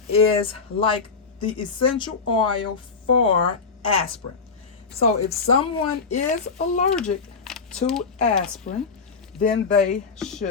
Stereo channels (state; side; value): quieter; right; 5.0 dB